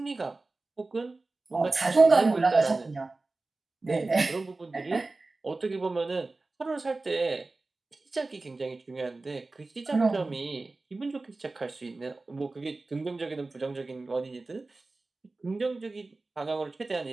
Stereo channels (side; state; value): left; quieter; 3.4 dB